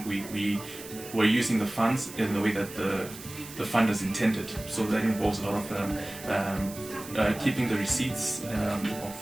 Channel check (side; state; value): right; noise; hiss, 14 dB below the sound